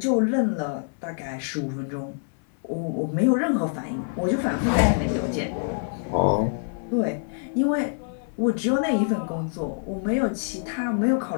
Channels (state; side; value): silent; right; 61 dB below the other